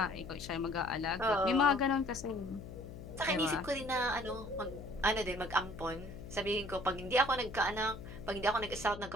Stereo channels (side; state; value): left; noise; hum, 12 dB below the sound